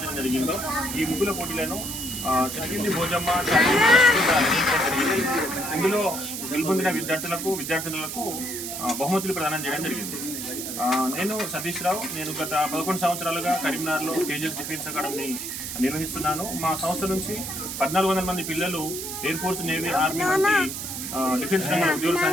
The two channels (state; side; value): noise; right; hiss, 6 dB below the sound